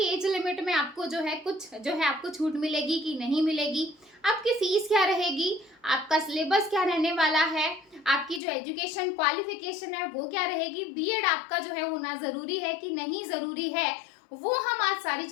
एज लिमिट में आपको जो है कुछ आपको छूट मिलेगी कि नहीं मिलेगी, आपकी फीस क्या रहेगी, आपका सिलेबस क्या रहने वाला है, आपकी जो एजुकेशन क्वालिफिकेशन है वो क्या रहेगी, बीएड आपका जो है होना जरूरी है कि नहीं जरूरी है, वो हम आज सारी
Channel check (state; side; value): drops out; right; at 8.4 s